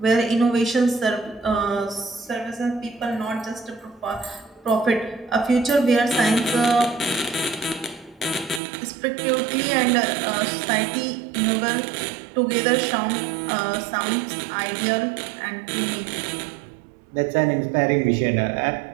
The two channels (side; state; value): left; drops out; at 8.6 s